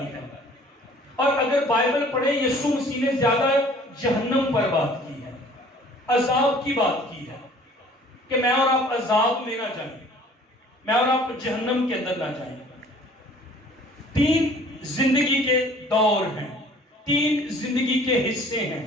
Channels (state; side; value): normal; both; correlation 0.52